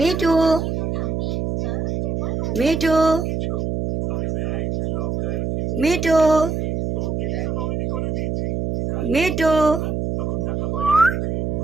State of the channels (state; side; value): noise; right; hum, 1 dB below the sound